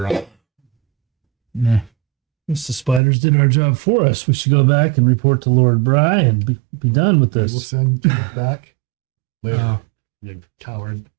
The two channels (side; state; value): left; drops out; at 3.0 s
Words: on. Nah. Guess the spiders did our job for us. We should go back and report to Lord Bry and be done with We'll this. send you back later. Oh. You coward.